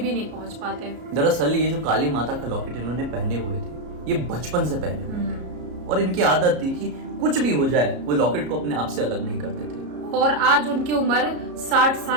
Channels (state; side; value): late; left; 33 ms